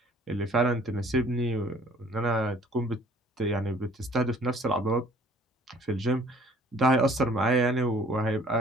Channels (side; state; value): both; normal; correlation 0.55